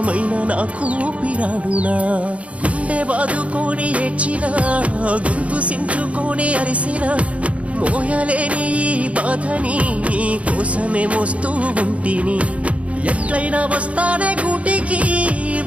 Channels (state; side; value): late; left; 0.064 ms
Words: నాకు పిరాడునా గుండె బాదుకొని ఏడ్చినా గొంతు సించుకొని అరిసినా మోయలేని ఈ బాధని నీ కోసమే మోస్తూ ఉంటిని ఎట్లయినా వస్తానే గూటికి